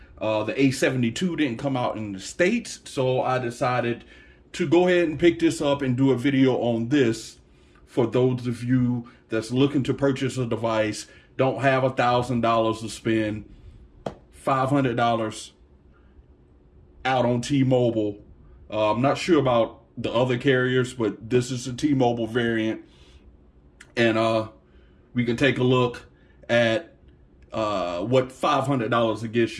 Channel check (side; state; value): both; identical; correlation 1.00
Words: The A72 didn't come out in the States, so I decided to go ahead and pick this up and do a video on this for those of you that's looking to purchase a device, don't have $1,000 to spend, $500 out on T-Mobile. I'm not sure about the other carriers, but this is a T-Mobile variant, and we can take a look at what $500 will get